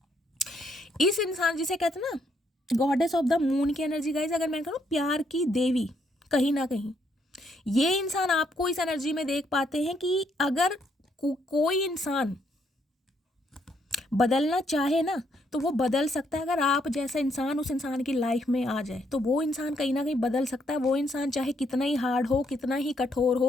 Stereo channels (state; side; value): normal; both; correlation 0.73